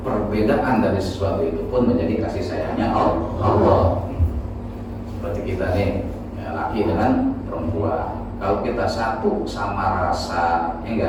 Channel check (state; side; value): identical; both; correlation 1.00